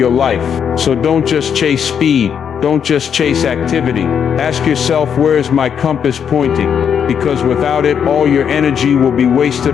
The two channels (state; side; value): quieter; right; 7.8 dB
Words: life. So don't just chase speed. Don't just chase activity. Ask yourself, where is my compass pointing? Because without it, all your energy will be